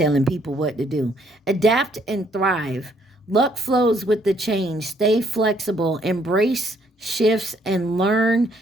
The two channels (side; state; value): both; normal; correlation 0.68